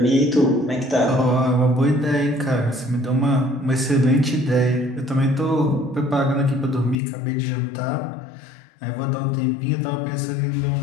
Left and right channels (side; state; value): right; drops out; at 7.0 s